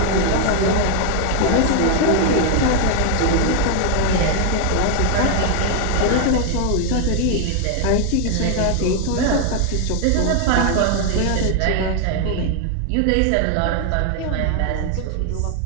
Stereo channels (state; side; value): different; both; correlation 0.01